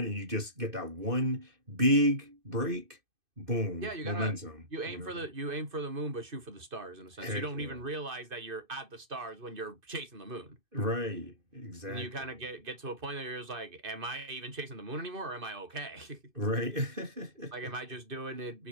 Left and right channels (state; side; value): late; left; 2.6 ms